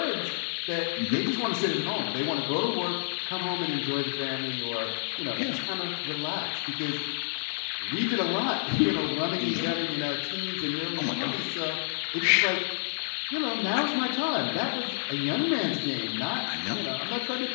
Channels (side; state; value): right; silent; digital silence